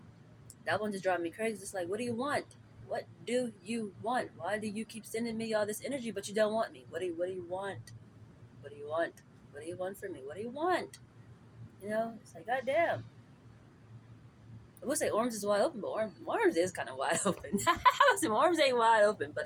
That one just drives me crazy. It's like, what do you want? What do you want? Why do you keep sending me all this energy, but you don't want me? What do you want? What do you want? What do you want from me? What do you want? You know, it's like, goddamn. I would say arms is wide open, but arms is kind of wide open. Some arms ain't wide open,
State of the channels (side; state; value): both; identical; correlation 1.00